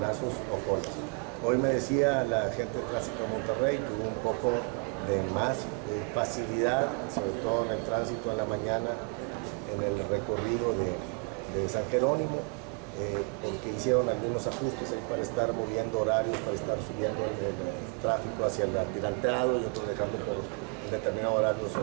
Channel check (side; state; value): left; quieter; 34.8 dB